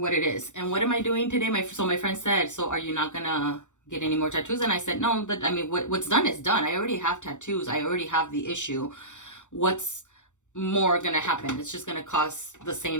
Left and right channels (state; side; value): late; right; 0.85 ms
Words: it is. And what am I doing today? So my friend said, so are you not gonna get any more tattoos? And I said, no, I mean, what's done is done. I already have tattoos. I already have the issue. What's more gonna happen? It's just gonna cause the